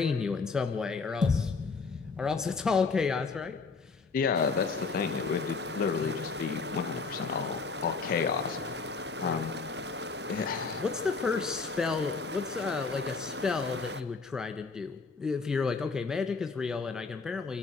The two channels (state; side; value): quieter; right; 4.5 dB